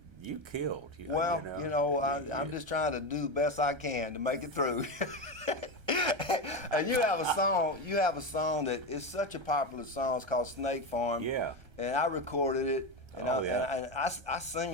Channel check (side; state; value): left; late; 1.3 ms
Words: You killed. I'm just trying to do the best I can to make it through. And you have a song that is such a popular song. It's called Snake Farm. Yeah. And I recorded it, and I sing